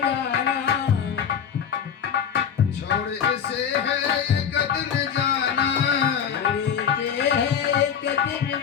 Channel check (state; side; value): quieter; right; 7.8 dB